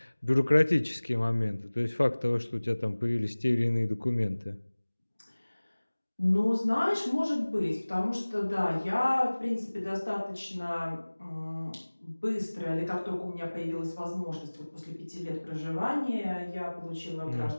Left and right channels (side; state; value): both; inverted; correlation -1.00